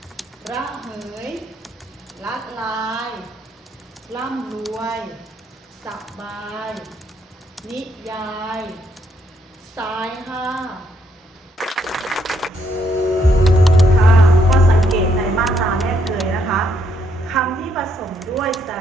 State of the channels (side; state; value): both; normal; correlation 0.74